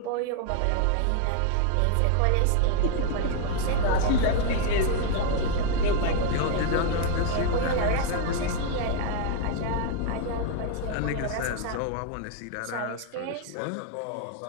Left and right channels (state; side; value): different; both; correlation 0.01